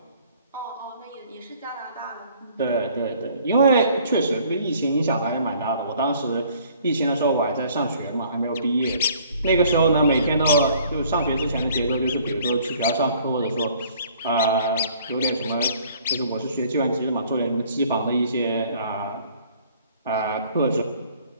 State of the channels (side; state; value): both; inverted; correlation -0.57